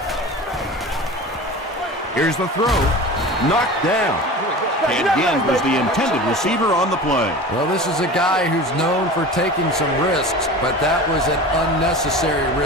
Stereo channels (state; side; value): normal; both; correlation 0.34